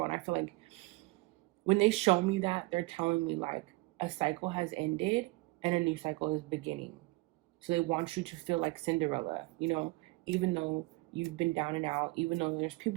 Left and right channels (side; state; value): left; quieter; 22.9 dB